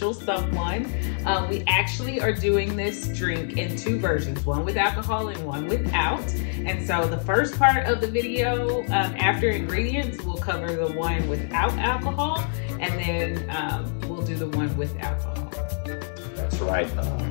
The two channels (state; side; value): silent; right; 61 dB below the other